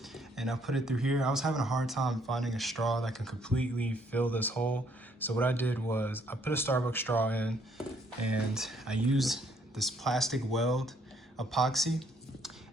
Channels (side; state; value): both; normal; correlation 0.67